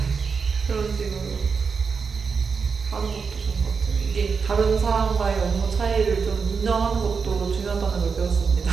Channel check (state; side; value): quieter; left; 5.5 dB